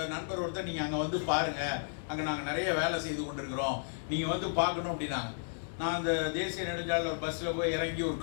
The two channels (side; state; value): right; silent; digital silence